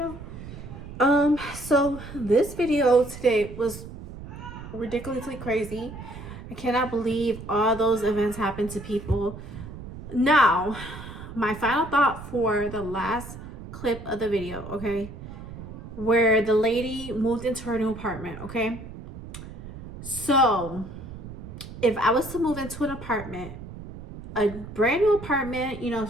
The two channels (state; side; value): noise; right; rumble, 12 dB below the sound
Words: So this video today was ridiculously crazy. I cannot believe all those events happened to people. Now, my final thought for the last clip of the video, okay? Where the lady moved into her new apartment, okay? So, if I was to move into an apartment, a brand new apartment, you know,